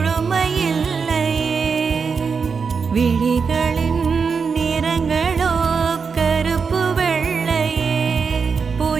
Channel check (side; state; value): left; quieter; 5.5 dB